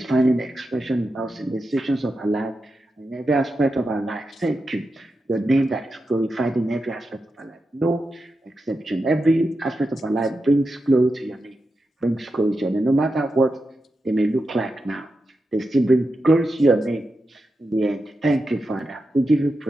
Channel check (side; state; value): both; normal; correlation 0.89